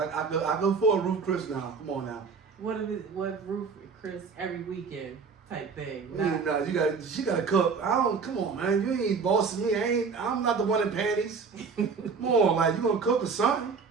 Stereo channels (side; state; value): left; quieter; 5.3 dB